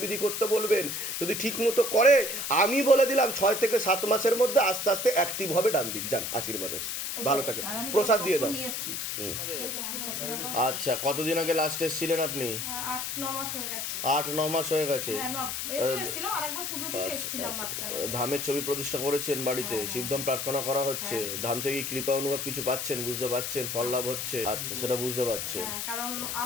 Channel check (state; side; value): noise; left; hiss, 3 dB below the sound